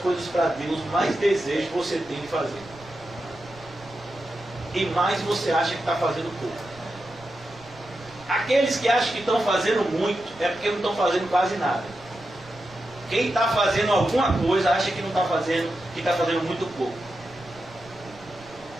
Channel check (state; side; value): noise; right; rumble, 23 dB below the sound